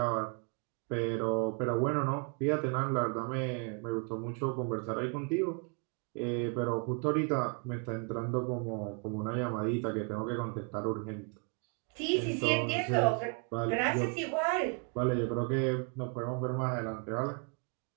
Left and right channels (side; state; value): left; quieter; 35.9 dB